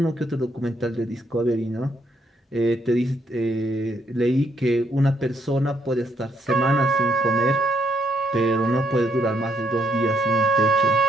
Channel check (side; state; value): both; normal; correlation 0.73